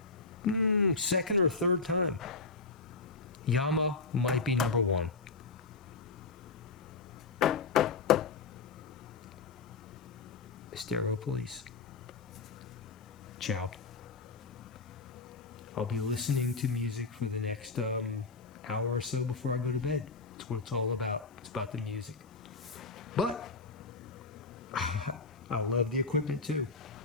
second or third time. Yamaha might be number 1. Stereo Police. Ciao. I'll be listening to music for the next hour or so before I go to bed. That's what it's all about. It's about the music. But I love the equipment too.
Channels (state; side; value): quieter; right; 4.2 dB